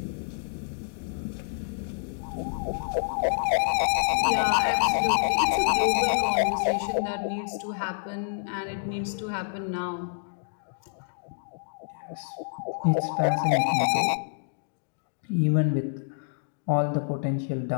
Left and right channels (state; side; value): silent; right; digital silence